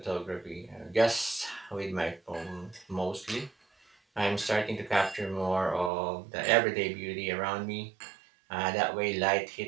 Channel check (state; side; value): drops out; left; at 5.9 s